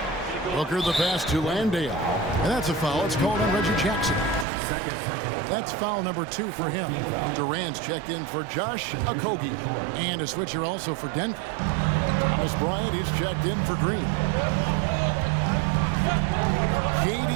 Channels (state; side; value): drops out; left; at 4.5 s